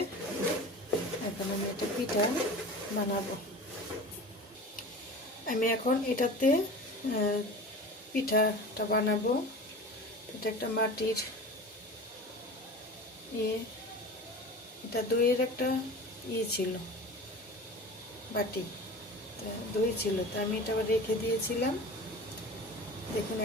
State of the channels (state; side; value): normal; both; correlation 0.35